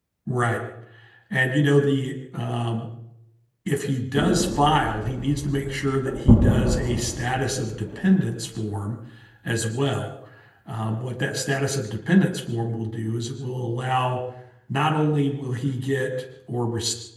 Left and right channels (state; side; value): identical; both; correlation 1.00